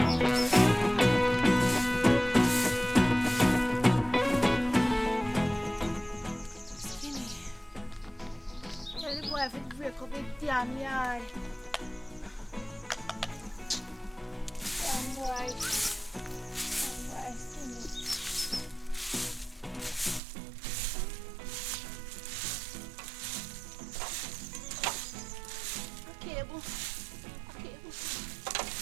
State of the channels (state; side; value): drops out; left; at 20.2 s